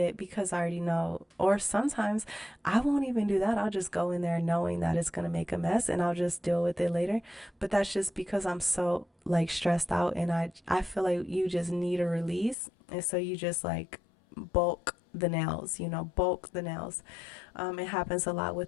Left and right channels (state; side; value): drops out; right; at 12.6 s